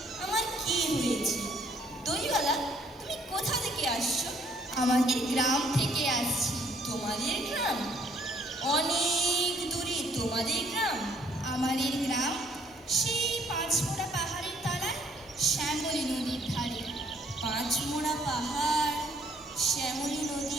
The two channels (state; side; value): normal; both; correlation 0.64